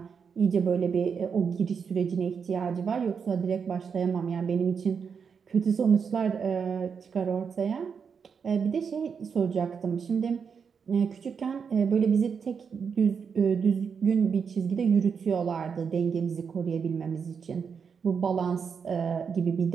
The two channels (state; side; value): quieter; left; 6.3 dB